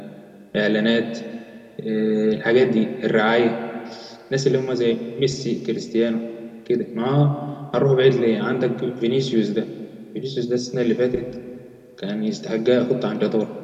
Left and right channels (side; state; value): both; identical; correlation 1.00